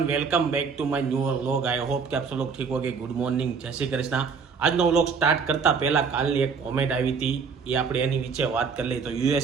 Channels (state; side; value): quieter; left; 5.6 dB